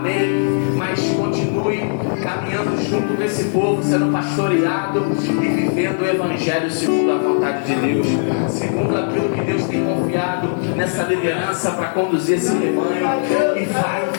mas continue caminhando junto com esse povo, sendo pastoreado e vivendo o evangelho segundo a vontade de Deus, segundo aquilo que Deus tem confiado nessa liderança para conduzir esse rebanho, e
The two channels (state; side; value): silent; right; 67 dB below the other